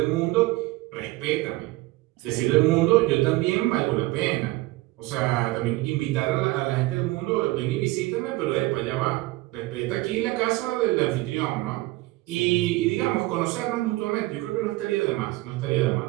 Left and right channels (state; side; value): quieter; left; 19.8 dB